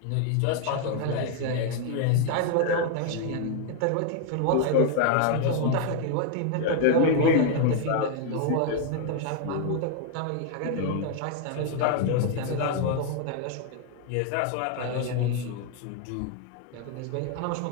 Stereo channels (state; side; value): different; both; correlation 0.00